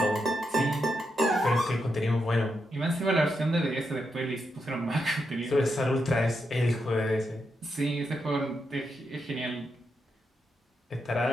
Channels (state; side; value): normal; both; correlation 0.84